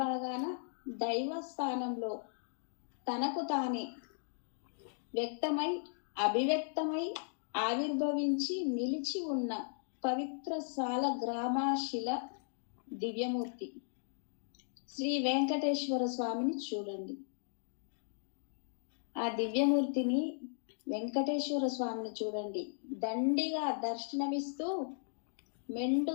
భాగాన దైవ స్థానంలో తనకు తానే వ్యక్తమై అభివ్యక్తమై ఆవిర్భవించి నిలిచి ఉన్న పవిత్ర సాల గ్రామాశిల దివ్యమూర్తి శ్రీ వెంకటేశ్వర స్వామిని చూడండి. ఆ దివ్యమూర్తిని వెంకటేశ్వర స్వామిని చూడండి. దండిగా దర్శనమిస్తూ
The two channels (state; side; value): silent; right; digital silence